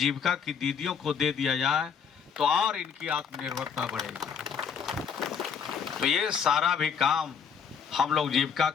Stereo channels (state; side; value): quieter; right; 7.0 dB